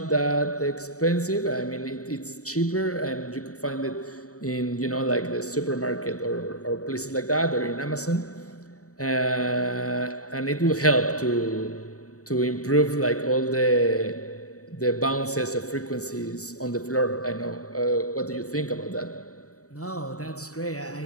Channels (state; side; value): late; right; 0.66 ms